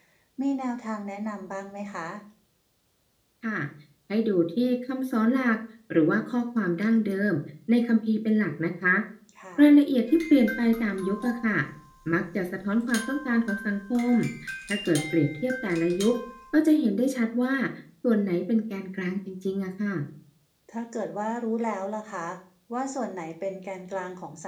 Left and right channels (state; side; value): identical; both; correlation 1.00